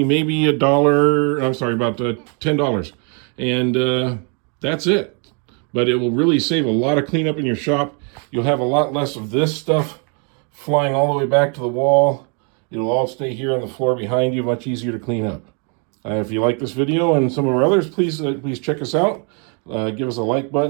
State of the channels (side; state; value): left; quieter; 37.6 dB